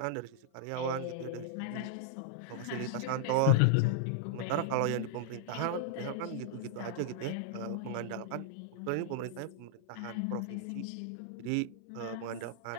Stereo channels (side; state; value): both; different; correlation -0.01